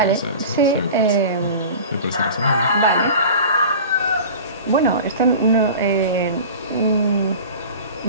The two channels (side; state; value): both; inverted; correlation -0.37